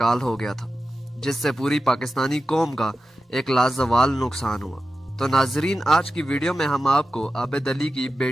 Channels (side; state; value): both; normal; correlation 0.93